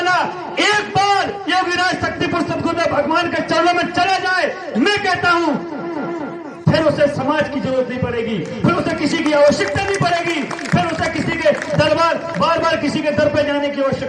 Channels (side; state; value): both; identical; correlation 1.00